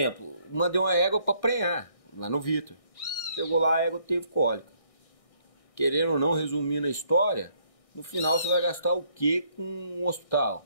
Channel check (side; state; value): right; late; 1.6 ms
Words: mandei uma égua para prenhar, lá no Vitor. Chegou lá, a égua teve cólica. Querendo ou não, resumindo a história, no final você vai gastar o quê com um hospital?